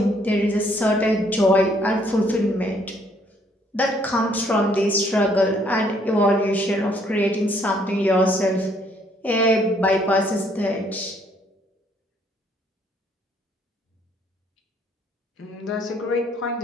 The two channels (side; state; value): both; normal; correlation 0.66